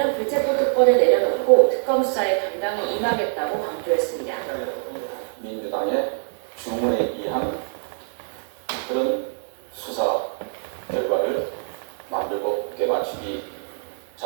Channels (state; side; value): silent; left; 63 dB below the other